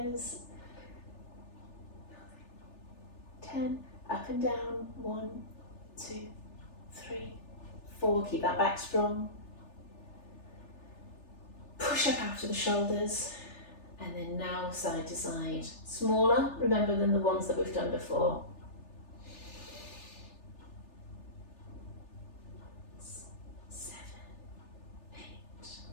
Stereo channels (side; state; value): right; late; 3.4 ms